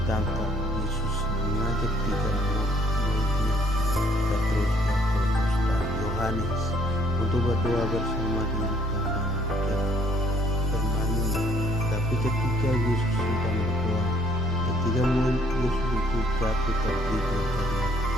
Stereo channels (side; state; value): both; normal; correlation 0.63